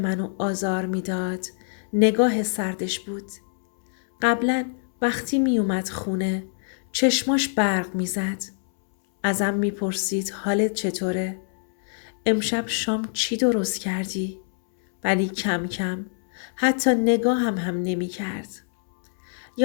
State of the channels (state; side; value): silent; right; 62 dB below the other